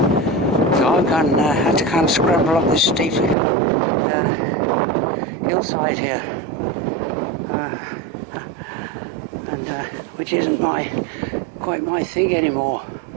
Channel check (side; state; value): left; drops out; at 3.4 s